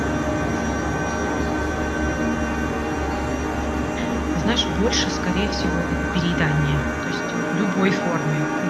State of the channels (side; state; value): both; identical; correlation 1.00